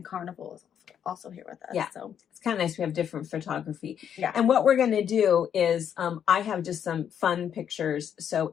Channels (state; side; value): quieter; right; 8.8 dB